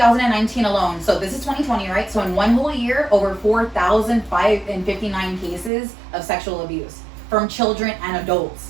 alone, so this is 2020, right? So in one whole year, over 4,559 cases of sexual abuse from children and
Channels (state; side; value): drops out; left; at 5.7 s